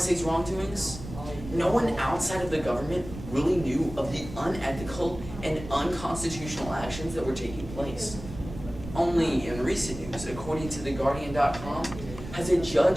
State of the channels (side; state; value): right; noise; rumble, 12 dB below the sound